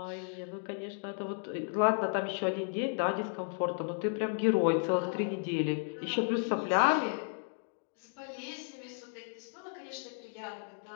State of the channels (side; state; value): right; silent; 55 dB below the other